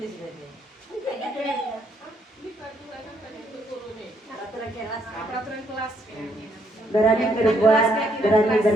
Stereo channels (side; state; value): both; normal; correlation 0.72